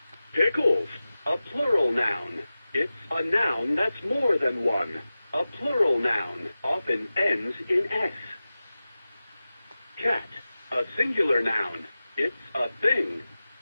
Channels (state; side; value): inverted; both; correlation -0.95